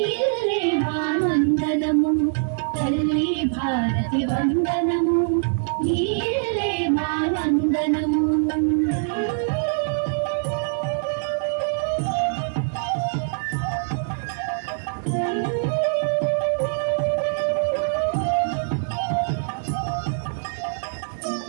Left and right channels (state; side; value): silent; left; digital silence